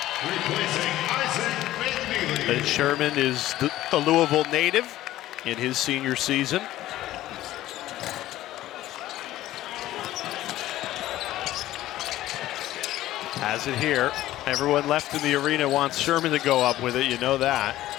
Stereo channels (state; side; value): quieter; right; 14.8 dB